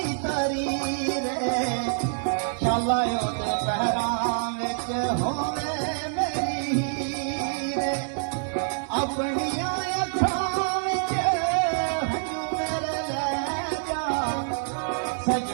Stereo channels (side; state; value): left; silent; 61 dB below the other